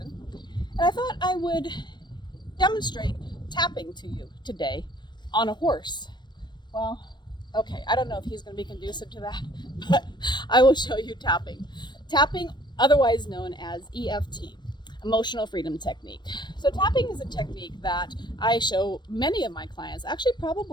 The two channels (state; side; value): late; right; 0.21 ms